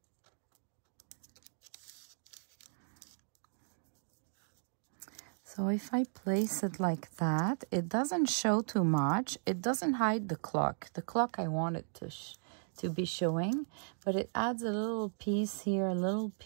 So if I place it like that, it doesn't show too much. It doesn't hide the clock. The clock I want it to be showing, but it adds a little piece here, a little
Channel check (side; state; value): left; silent; digital silence